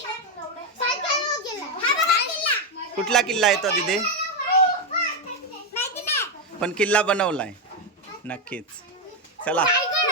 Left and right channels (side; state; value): both; normal; correlation 0.06